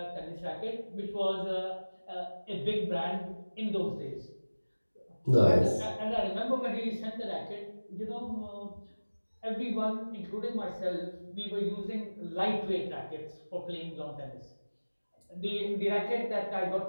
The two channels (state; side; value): inverted; both; correlation -1.00